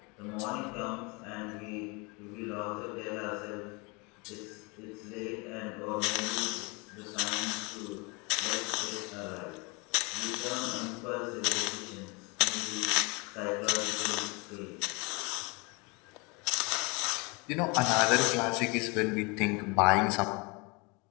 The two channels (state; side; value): quieter; right; 28.7 dB